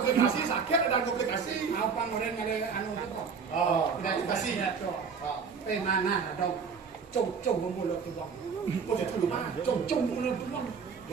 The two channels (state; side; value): quieter; left; 5.8 dB